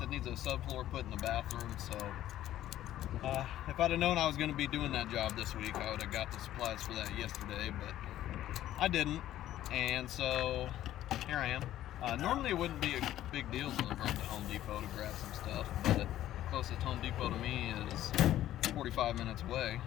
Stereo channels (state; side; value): quieter; right; 13.1 dB